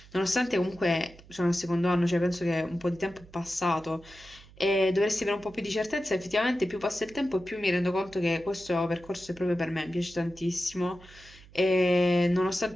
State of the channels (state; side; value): noise; right; hum, 23 dB below the sound